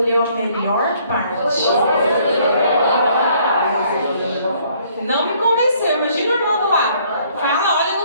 a melhor parte. Não me convenceu. Imagina o irmão do lado. Fala, olha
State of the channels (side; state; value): both; inverted; correlation -0.63